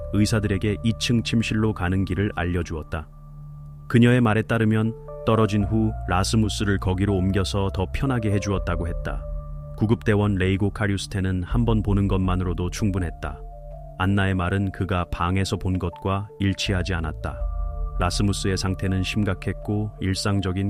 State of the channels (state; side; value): identical; both; correlation 1.00